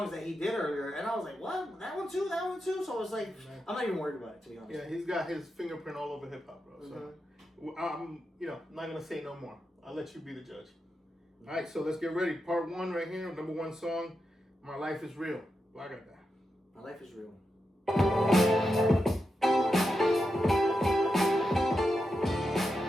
that he did earlier, and I was like, what? That one too? That one too? So I was like, I'm not even worried about it, to be honest. Yeah, he's got his fingerprint all over hip-hop, bro. So I'm, you know, not going to say no more. I'll let you be the judge. All right, so let's get ready. Part one right here, number one song, My Life is Real. Well, I got that. My life is real.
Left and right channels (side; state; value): both; normal; correlation 0.87